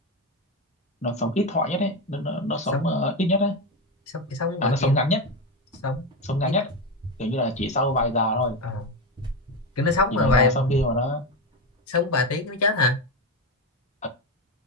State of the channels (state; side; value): normal; both; correlation 0.14